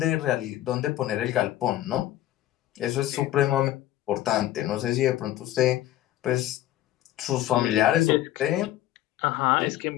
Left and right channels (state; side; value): quieter; right; 14.1 dB